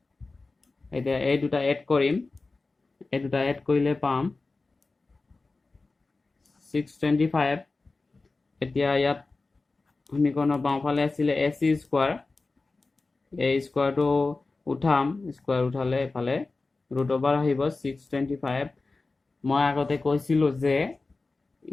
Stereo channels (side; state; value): right; quieter; 3.6 dB